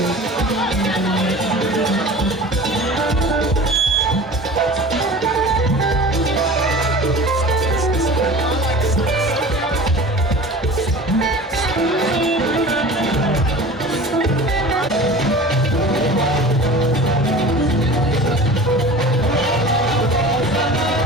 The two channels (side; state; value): both; normal; correlation 0.39